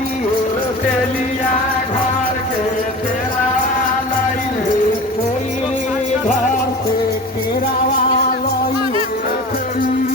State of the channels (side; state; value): both; normal; correlation 0.36